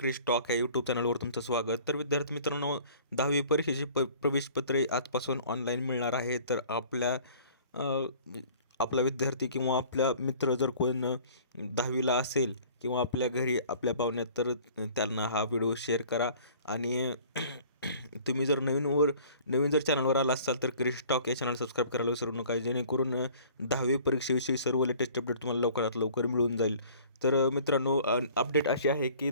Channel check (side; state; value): both; inverted; correlation -0.50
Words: टॉक या यूट्यूब चॅनलवर तुमचं स्वागत. तर विद्यार्थी मित्रांनो, 10वी परीक्षेची प्रवेशपत्रे आजपासून ऑनलाईन मिळणार आहे. तर अ, आपला विद्यार्थी किंवा आपला मित्र जर कोण 10वीला असेल किंवा आपल्या घरी आपल्या पाहुण्यात, तर त्यांना हा व्हिडिओ शेअर करा. आणि तुम्ही जर नवीन जर चॅनलवर आला असाल तर क्रिश टॉक या चॅनल सबस्क्राईब करायला विसरू नका, जेणेकरून 10वी परीक्षेविषयी सर्व लेटेस्ट अपडेट तुम्हाला लवकरात लवकर मिळून जाईल. तर मित्रांनो, अपडेट अशी आहे की